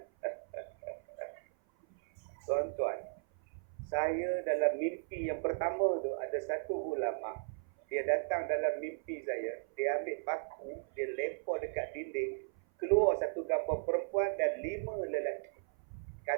Tuan-tuan, saya dalam mimpi yang pertama tu ada satu ulama. Dia datang dalam mimpi saya, dia ambil paku, dia lempar dekat dinding, keluar satu gambar perempuan dan 5 lelaki.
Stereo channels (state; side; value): silent; left; 54 dB below the other